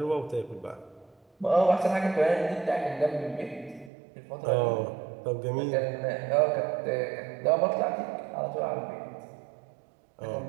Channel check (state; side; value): drops out; left; at 3.9 s